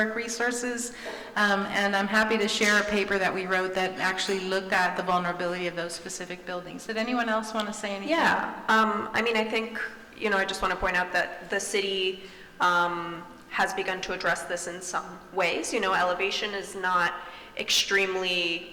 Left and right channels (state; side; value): identical; both; correlation 1.00